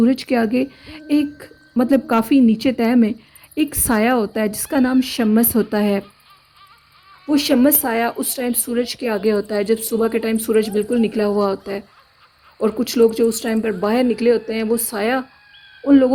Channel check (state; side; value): identical; both; correlation 1.00